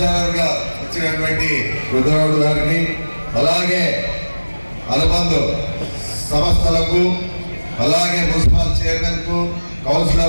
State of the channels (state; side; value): inverted; both; correlation -1.00